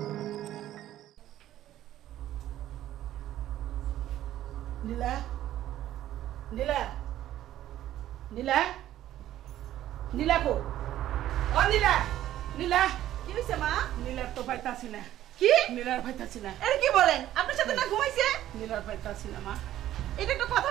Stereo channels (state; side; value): quieter; left; 13.0 dB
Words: নীলা নীলা নীলা নীলা কো ও নীলা নীলা কি হইছে মা? নীলার তো পাইতাছি না। কি? নীলার পাইতাছি না। এর কি বলেন? আপনার সাথে না ঘুমাইছে? নীলার পাইতাছি না মা। এটা একটা কথা